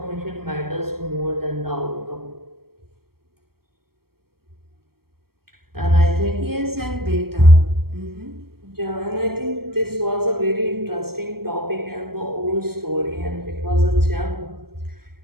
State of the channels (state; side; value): late; left; 0.94 ms